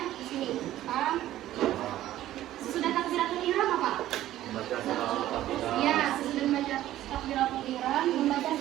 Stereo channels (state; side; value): quieter; left; 13.8 dB